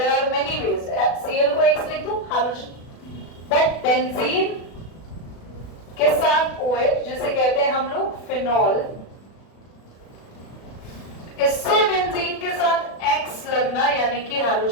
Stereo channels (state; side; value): late; right; 36 ms